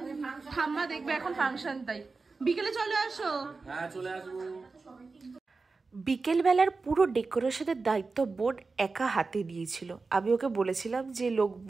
ঠাম্মা দেখবে এখন ফাংশন, তাই বিকেলে চলে আসো। হ্যাঁ চলে আসবো। বিকেলবেলার পুরো ডেকোরেশনের দায়িত্ব বোন একা হাতে নিয়েছিল। আমি ওকে বলেছিলাম যে লোক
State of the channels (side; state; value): left; quieter; 4.1 dB